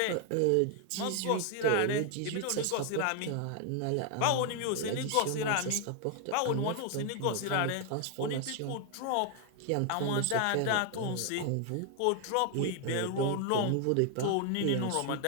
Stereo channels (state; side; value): different; both; correlation 0.00